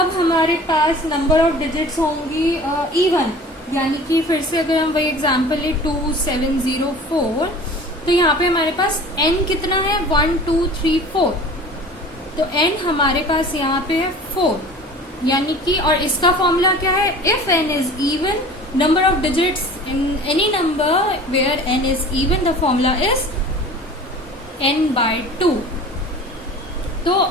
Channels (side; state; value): both; normal; correlation 0.42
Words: हमारे पास नंबर ऑफ डिजिट्स होंगी इवन, यानी कि फिर से अगर हम वही एग्जांपल ले 2704, तो यहाँ पे हमारे पास n कितना है 1 2 3 4, तो n हमारे पास यहाँ पे है 4, यानी कि और इसका फॉर्मूला क्या है, if n is even number of digits in any number where n is even, the formula is n/2। तो